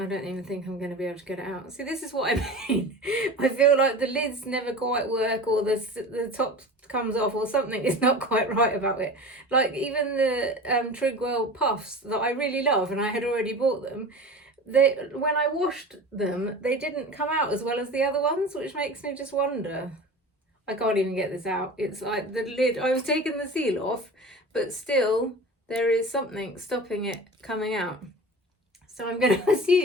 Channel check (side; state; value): both; normal; correlation 0.35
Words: don't even think I'm going to be able to get it out. See, this is what I mean. I feel like the lids never quite work, or the top comes off, or something is not quite right about it. Like even the Trigwell puffs that I really love, and I had already bought them, when I washed them, they didn't come out as well as the other ones, which makes me just wonder. I can't even get this out. It's like the lid, I was taking the seal off, but still there is something stopping it coming out. So I'm going to